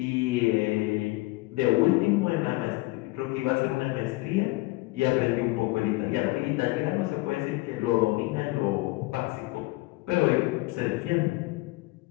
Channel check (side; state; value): right; quieter; 21.7 dB